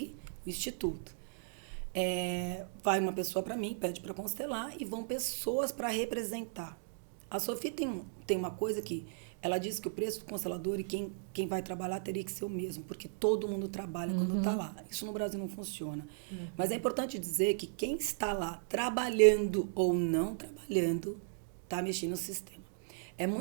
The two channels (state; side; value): silent; left; digital silence